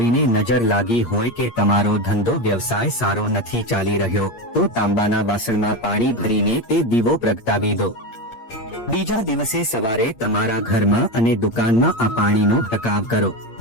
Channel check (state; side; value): late; right; 8.6 ms